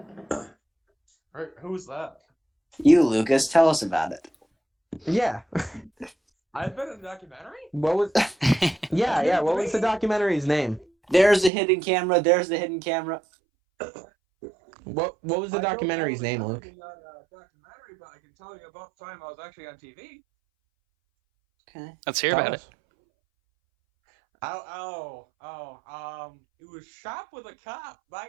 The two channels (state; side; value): drops out; left; at 11.5 s